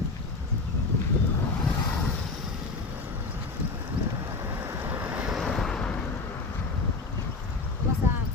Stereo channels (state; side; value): quieter; right; 3.8 dB